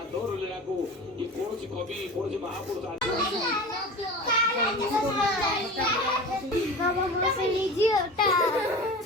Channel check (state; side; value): normal; both; correlation 0.34